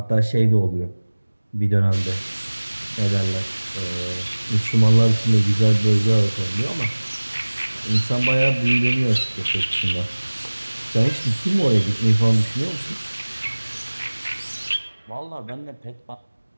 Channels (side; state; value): both; inverted; correlation -1.00